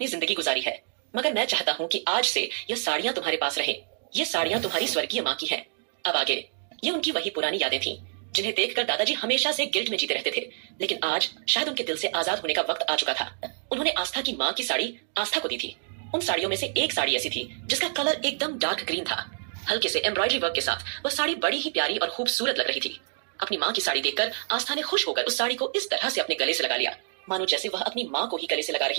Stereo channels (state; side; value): silent; left; digital silence